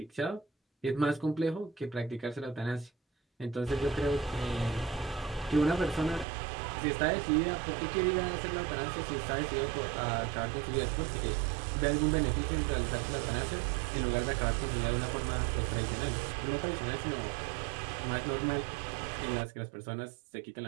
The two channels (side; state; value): left; drops out; at 6.2 s